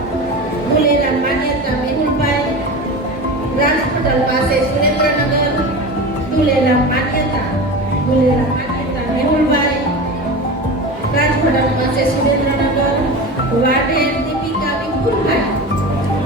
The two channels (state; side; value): normal; both; correlation 0.29